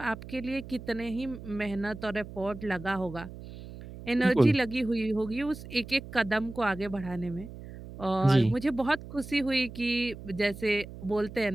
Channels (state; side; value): noise; right; hum, 13 dB below the sound